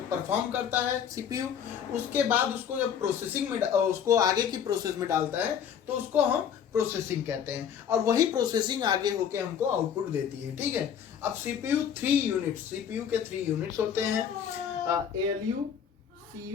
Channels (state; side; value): quieter; right; 8.2 dB